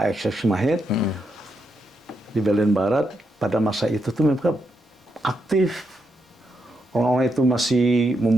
ex-mahit di Berlin Barat. Pada masa itu tuh mereka aktif. Orang-orang itu masih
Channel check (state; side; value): normal; both; correlation 0.82